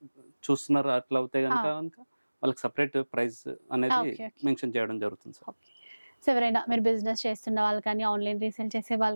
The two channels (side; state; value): both; inverted; correlation -1.00